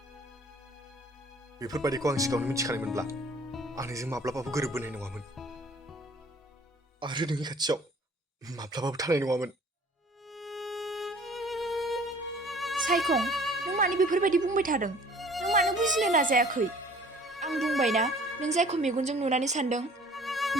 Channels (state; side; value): normal; both; correlation 0.52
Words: बेफोरबायदिखौ आं सिगाङावनो मिथिखानायमोनब्ला आं नोंजों माब्लाबाबो गोरोबबोनाय नङामोन आरो नोंनि खाथियाव माब्लाबाबो थानाय नङामोन। सायखं नों मानो बेफोरबायदि बुंबाय थादों नों मानो बुजिनो नाजायाखै आं बुंबायना नों जायखौ मेगनजों नुनानै सानदों